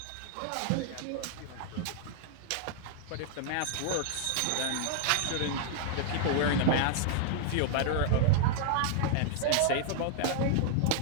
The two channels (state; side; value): different; both; correlation -0.01